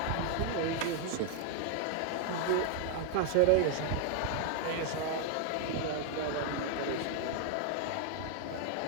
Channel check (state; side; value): different; both; correlation 0.00